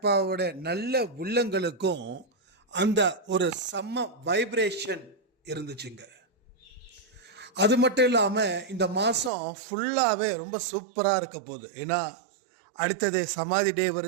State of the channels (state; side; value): drops out; left; at 9.3 s